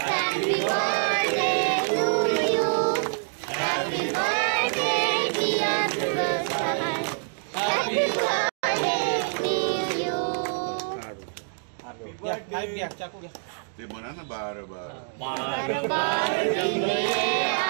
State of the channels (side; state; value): left; silent; digital silence